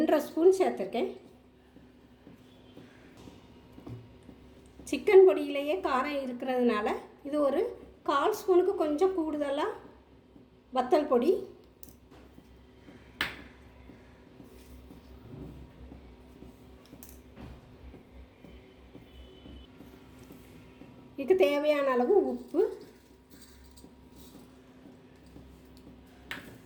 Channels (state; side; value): identical; both; correlation 1.00